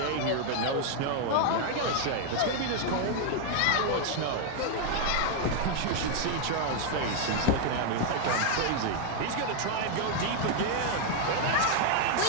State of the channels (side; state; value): both; different; correlation 0.00